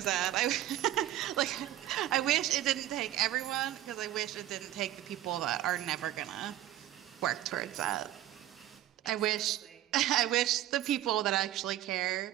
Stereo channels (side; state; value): left; quieter; 13.3 dB